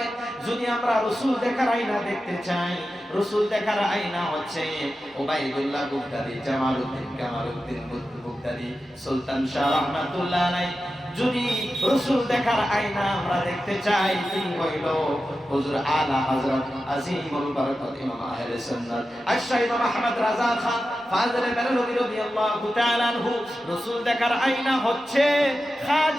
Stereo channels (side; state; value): both; normal; correlation 0.92